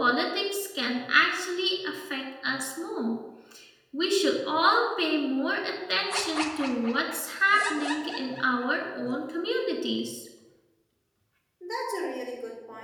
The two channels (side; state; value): both; identical; correlation 1.00